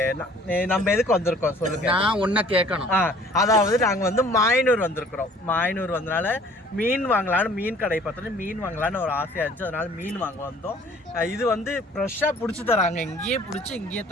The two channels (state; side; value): normal; both; correlation 0.53